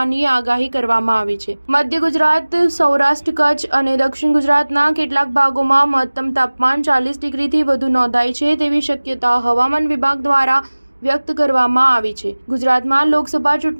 આગાહી કરવામાં આવી છે. મધ્ય ગુજરાત, સૌરાષ્ટ્ર, કચ્છ અને દક્ષિણ ગુજરાતના કેટલાક ભાગોમાં મહત્તમ તાપમાન 40 ડિગ્રીથી વધુ નોંધાય છે તેવી શક્યતા હવામાન વિભાગ દ્વારા વ્યક્ત કરવામાં આવી છે. ગુજરાતમાં લોકસભા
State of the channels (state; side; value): inverted; both; correlation -1.00